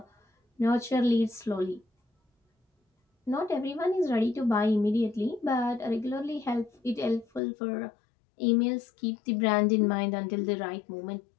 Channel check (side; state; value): right; drops out; at 7.4 s